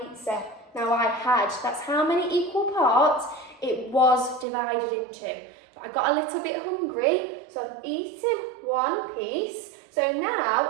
Now that's how many equal parts it was divided into. But I got a little bit hungry, so I've eaten 1 piece. So now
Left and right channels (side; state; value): left; drops out; at 4.5 s